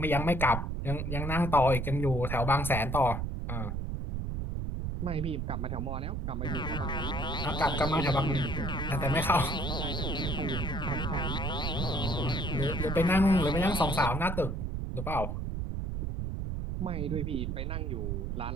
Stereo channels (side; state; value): right; noise; rumble, 2 dB below the sound